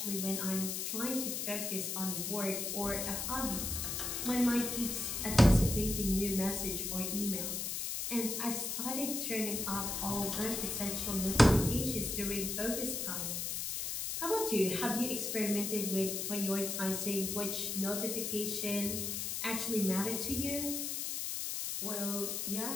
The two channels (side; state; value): left; noise; hiss, 2 dB below the sound